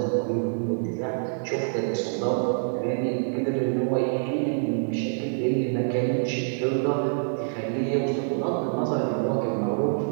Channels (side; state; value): left; silent; digital silence